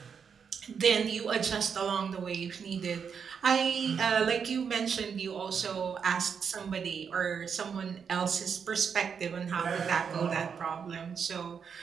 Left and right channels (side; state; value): left; quieter; 6.7 dB